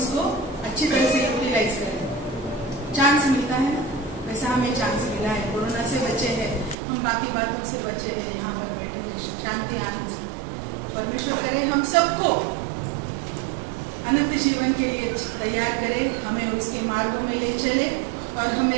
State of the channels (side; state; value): left; drops out; at 6.8 s